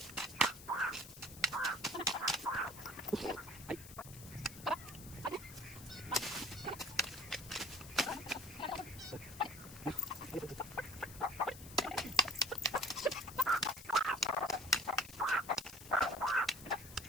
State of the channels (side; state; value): left; noise; hiss, 15 dB below the sound